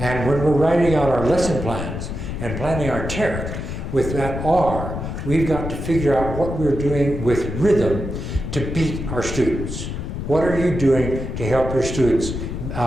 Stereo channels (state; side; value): noise; left; rumble, 5 dB below the sound